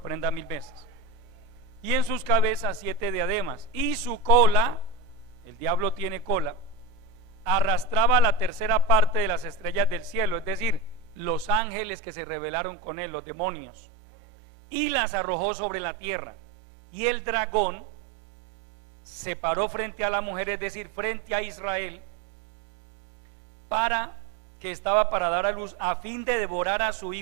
1000 veces. Y en sus cabezas 7 diademas, y su cola, el diablo tiene cola, arrastraba la tercera parte de las estrellas del cielo, es decir, los ángeles que se rebelaron con él, los demonios, y las arrojó sobre la tierra. Y el dragón se paró frente a la mujer, es decir, frente a Israel, que estaba para dar a luz, a fin de devorar a su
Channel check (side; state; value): left; drops out; at 11.6 s